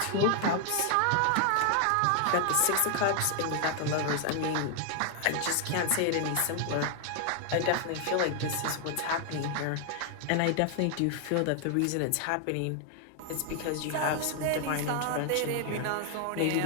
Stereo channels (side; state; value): both; different; correlation 0.00